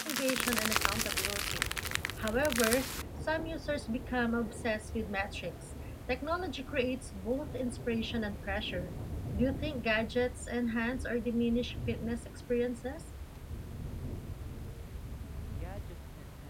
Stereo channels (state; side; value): identical; both; correlation 1.00